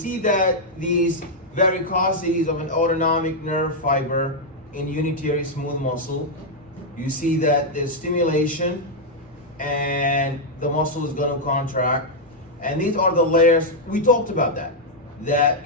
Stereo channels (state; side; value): normal; both; correlation -0.03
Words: that these varicosities of an autonomic nerve fiber in unitary smooth muscle, you see that there's stimulation and the muscle is going to contract. And these are the layers. We talked about that